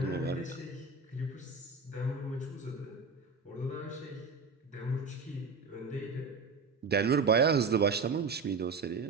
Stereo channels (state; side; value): quieter; left; 4.4 dB